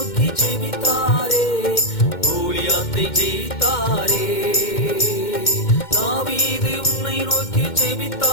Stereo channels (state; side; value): late; right; 2.1 ms